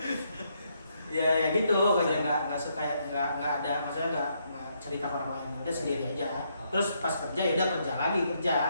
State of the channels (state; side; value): inverted; both; correlation -0.75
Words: Ya gitu, kayak nggak suka, nggak ada, maksudnya nggak cerita ke orang lain, udah sendiri aja. Terus pas kerja ya udah kerja lagi kerja